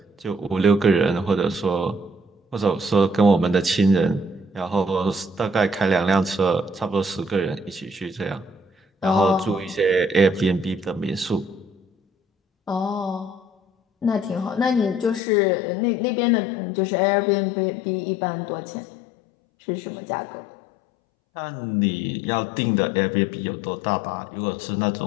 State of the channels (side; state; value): right; drops out; at 15.2 s